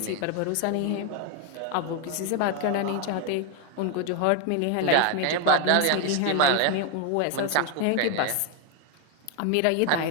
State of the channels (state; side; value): different; both; correlation 0.01